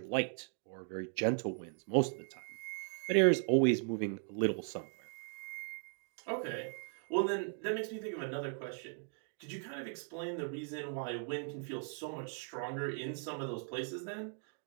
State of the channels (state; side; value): silent; left; 52 dB below the other